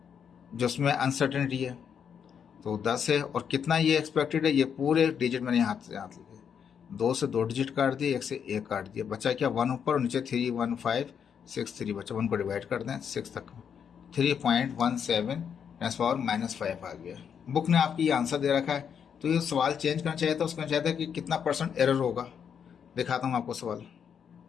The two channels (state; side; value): quieter; right; 7.6 dB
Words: जो उसमें अनसर्टेनिटी है, तो 10 है। और कितना ये एक्सपेक्टेड है, ये पूरे डिजिट मैंने हाथ से हाथ लिखे, 2 से 2 डिजिट काट दिए, 1 से 1 काट दिया, बचा क्या 1 ऊपर और नीचे 31563 बचा, 1 को डिवाइड कर दें 6 तक, 3.17 10⁻⁻5 आ गया। बुक ने आपकी ये आंसर दे रखा है, तो ये सवाल चेंज करना चाहिए था, उसका चाहता है कि कितना % एरर होगा। दिखाता हूँ आपको सवाल,